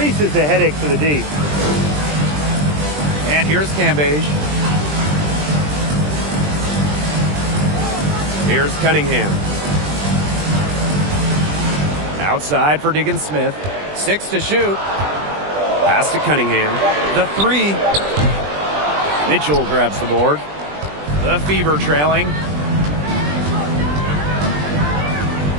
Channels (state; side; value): late; left; 20 ms